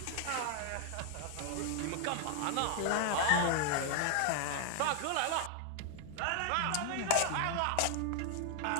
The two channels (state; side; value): different; both; correlation 0.00